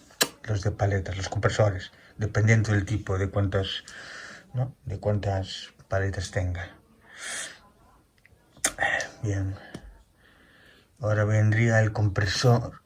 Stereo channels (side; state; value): both; identical; correlation 1.00